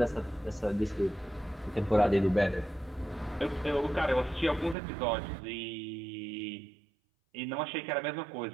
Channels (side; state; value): left; drops out; at 4.8 s